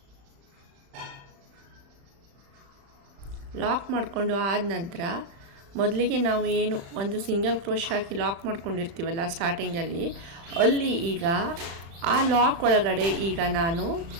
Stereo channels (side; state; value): left; late; 35 ms